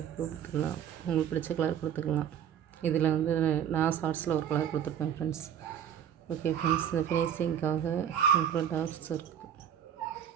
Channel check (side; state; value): left; quieter; 9.1 dB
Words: ப்ளூ கொடுத்துக்கலாம், உங்களுக்கு பிடிச்ச கலர் கொடுத்துக்கலாம். இதில் வந்து நான் ஷார்ட்ஸில் ஒரு கலர் கொடுத்துருப்பேன் ஃப்ரெண்ட்ஸ். ஓகே ஃப்ரெண்ட்ஸ், இந்த ஃபினிஷிங்காக அப்புறம் dark circle.